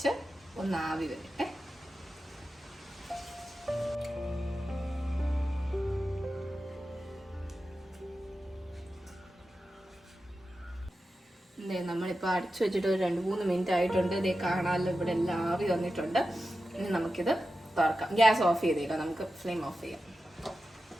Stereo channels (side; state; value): both; normal; correlation 0.92